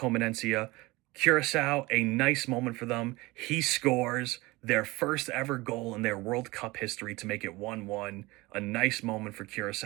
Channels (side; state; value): left; quieter; 21.8 dB